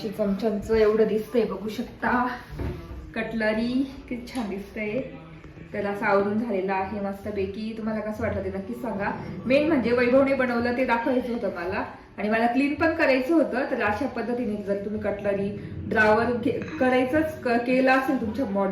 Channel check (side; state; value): both; identical; correlation 1.00